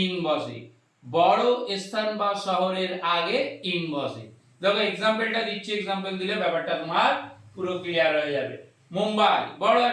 ইন বসে। বড় স্থান বা শহরের আগে ইন বসে। দেখো এক্সাম্পলটা দিচ্ছি, এক্সাম্পল দিলে ব্যাপারটা তোমার পুরো ক্লিয়ার হয়ে যাবে। মুম্বাই বড়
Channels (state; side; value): identical; both; correlation 1.00